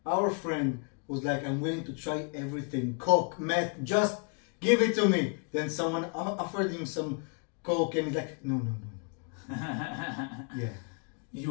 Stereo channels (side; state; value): right; quieter; 38.4 dB